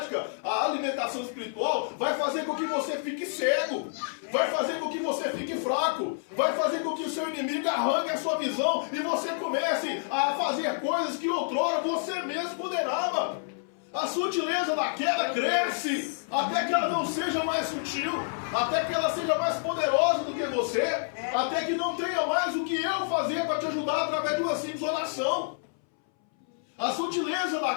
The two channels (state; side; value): silent; right; 59 dB below the other